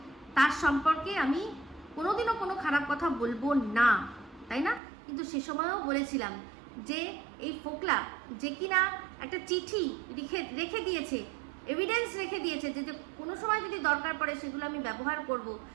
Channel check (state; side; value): drops out; left; at 4.8 s